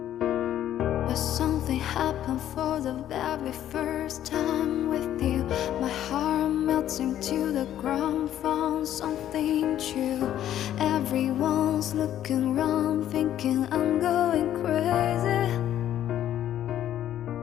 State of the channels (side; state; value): right; quieter; 11.5 dB